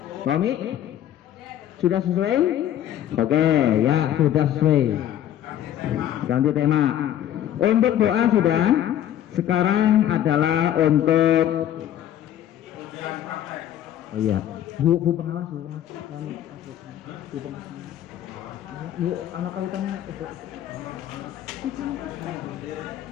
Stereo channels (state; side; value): quieter; right; 11.3 dB